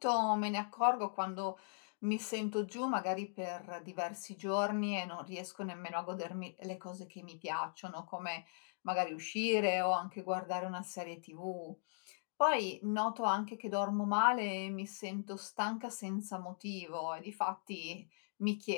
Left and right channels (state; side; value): silent; right; digital silence